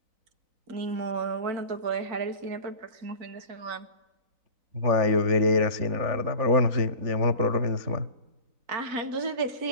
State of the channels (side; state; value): left; late; 3.9 ms